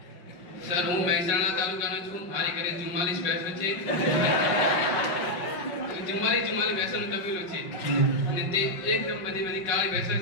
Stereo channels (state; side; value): late; right; 5.6 ms